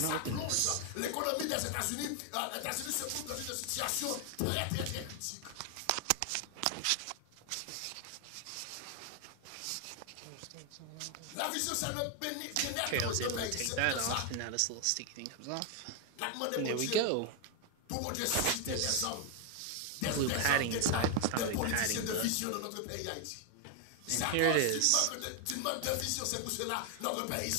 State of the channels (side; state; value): both; different; correlation 0.00